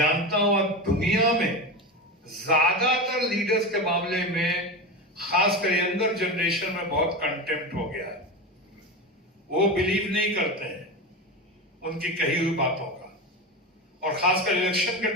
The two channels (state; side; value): normal; both; correlation 0.22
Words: हूं दुनिया में ज्यादातर लीडर्स के मामले में, खासकर यंगर जनरेशन में बहुत कंटेम्प्ट हो गया है। वो बिलीव नहीं करते हैं उनकी कही हुई बातों का, और खासकर इलेक्शन के